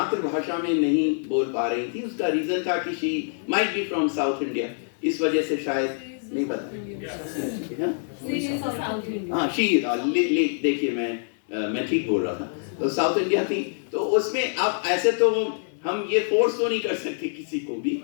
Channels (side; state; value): right; silent; digital silence